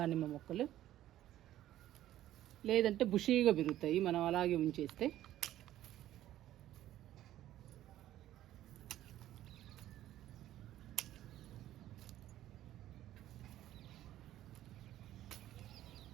మొక్కలు. లేదంటే బుషీగా పెరుగుతాయి మనం అలాగే ఉంచేస్తే.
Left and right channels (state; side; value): quieter; left; 13.3 dB